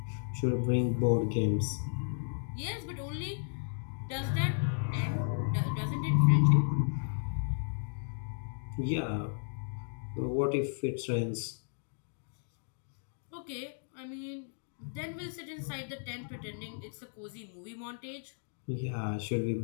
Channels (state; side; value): silent; right; digital silence